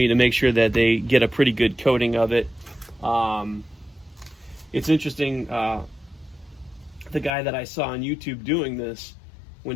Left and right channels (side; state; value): right; drops out; at 7.3 s